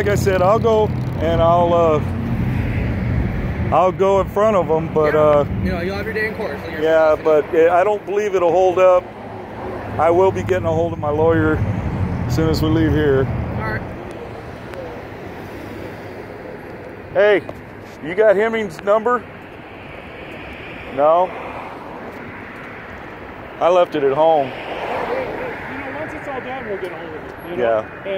I said, I'll go and I'll go in front of them, but you know, you'll have your day in court. So yeah, but I don't believe it'll hold up. I will be getting a hold of my lawyer as soon as we leave here. All right. Hey, you got Hemming's number? No? I left it at home. You know, once it's all done, we'll get a hold of it. You know? Yeah.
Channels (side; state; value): both; identical; correlation 1.00